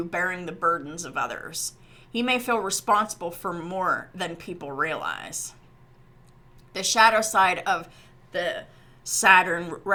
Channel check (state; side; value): identical; both; correlation 1.00